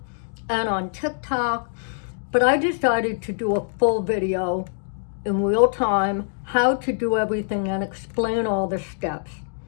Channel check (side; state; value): right; silent; digital silence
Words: and on TikTok, but I decided to do a full video in real time, how to do everything and explain all the steps.